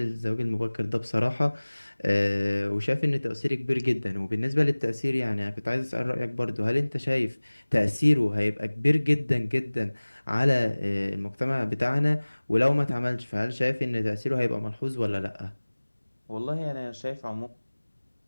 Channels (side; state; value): both; inverted; correlation -1.00